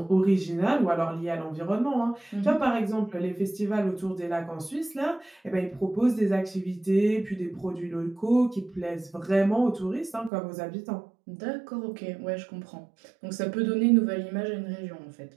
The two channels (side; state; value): left; drops out; at 10.3 s